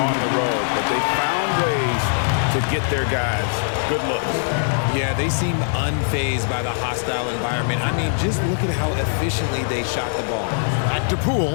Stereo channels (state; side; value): silent; right; digital silence